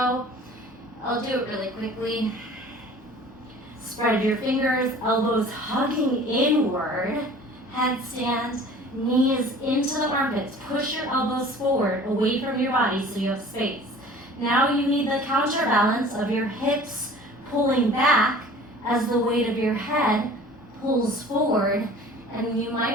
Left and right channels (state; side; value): normal; both; correlation 0.46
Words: I'll do it really quickly. Spread your fingers, elbows hugging inward, headstand, knees into the armpits. Push your elbows forward, away from your body so you have space. Now you need the counterbalance of your hips pulling back as the weight of your head pulls forward, and you